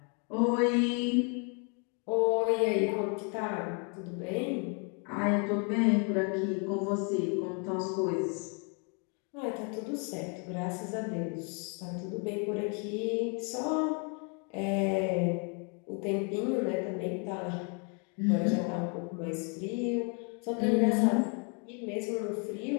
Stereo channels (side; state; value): right; quieter; 36.2 dB